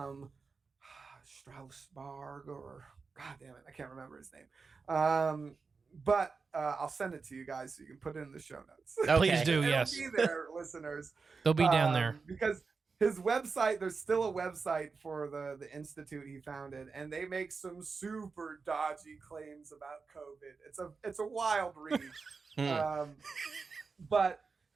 Straussberg, or God damn it, I can't remember his name. But I'll send it to you guys so you can put it in the show notes. Please do, yes. It'll be there, listeners. They'll be down there. Because his website, there's still a website for the institute he founded, and they make some super dodgy claims about COVID. It's a wild read. But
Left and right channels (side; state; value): left; quieter; 4.7 dB